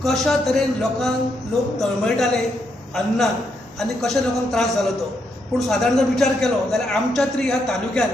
कशा तरेन लोक तळमळटाले अन्नान आनी कशा लोकांक त्रास जालो तो। पूण सादारण जर विचार केलो जाल्यार आमच्या तरी ह्या तालुक्यान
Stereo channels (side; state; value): both; normal; correlation 0.78